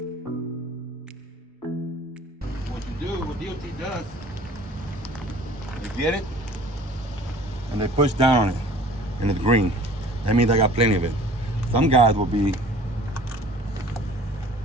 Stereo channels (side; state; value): both; normal; correlation 0.48